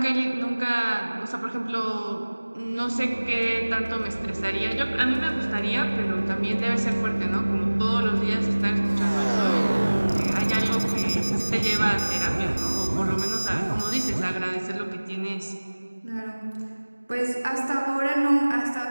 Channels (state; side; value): inverted; both; correlation -1.00